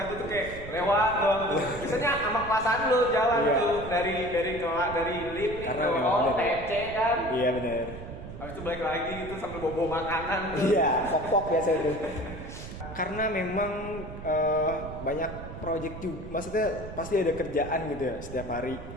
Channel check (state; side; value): noise; right; rumble, 11 dB below the sound